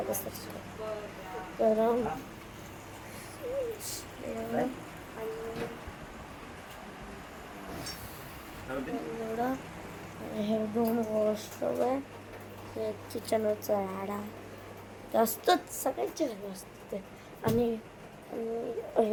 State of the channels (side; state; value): both; identical; correlation 1.00